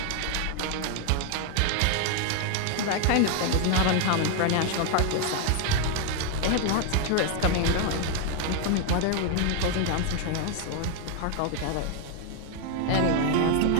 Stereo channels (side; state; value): both; different; correlation 0.01